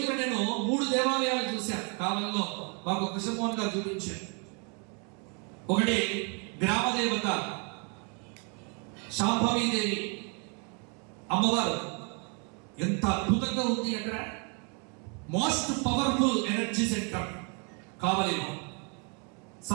నేను 3 దేవాలయాలు చూశాను. కాలంలో మాకు కృష్ణమోహన్ గారు చూపించారు. ఒకటి గ్రామ దేవత శాంభవీదేవి అమ్మవారు, ఎంత అద్భుతంగా ఉంది అక్కడ. మోస్ట్ పవర్ఫుల్ ఎనర్జీ సెంటర్ కావలిలో.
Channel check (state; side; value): quieter; left; 36.4 dB